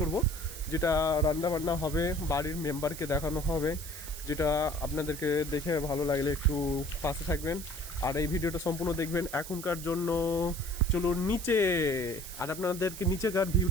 যেটা রান্না বান্না হবে, বাড়ির মেম্বারকে দেখানো হবে, যেটা আপনাদেরকে দেখে ভালো লাগলে একটু পাশে থাকবেন আর এই ভিডিওটা সম্পূর্ণ দেখবেন। এখনকার জন্য চলুন নিচে, আর আপনাদেরকে নিচেকার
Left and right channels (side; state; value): right; noise; hiss, 11 dB below the sound